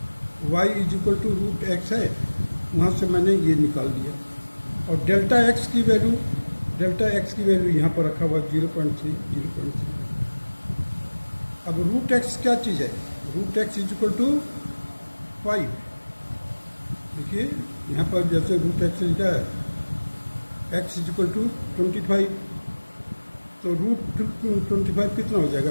y is equal to root x है, वहाँ से मैंने ये निकाल दिया. और डेल्टा x की वैल्यू यहाँ पर रखा हुआ 0.3. अब रूट x क्या चीज़ है, root x is equal to 5. देखिए यहाँ पर जैसे रूट x लिखा है x इज इक्वल टू 25, तो रूट 25 कितना हो जाएगा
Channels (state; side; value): inverted; both; correlation -1.00